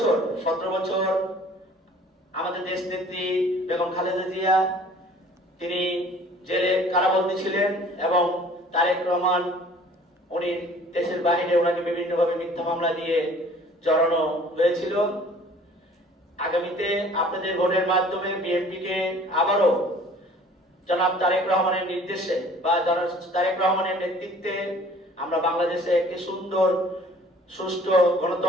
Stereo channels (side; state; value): both; normal; correlation 0.51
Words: বছর আমাদের দেশ নেত্রী বেগম খালেদা জিয়া তিনি জেলে কারাবন্দী ছিলেন এবং তারেক রহমান উনি দেশের বাহিরে ওনাকে বিভিন্নভাবে মিথ্যা মামলা দিয়ে জড়ানো হয়েছিল। আগামীতে আপনাদের ভোটের মাধ্যমে বিএনপিকে আবারও জনাব তারেক রহমানের নির্দেশে বা জনাব তারেক রহমানের নেতৃত্বে আমরা বাংলাদেশে একটি সুন্দর সুষ্ঠু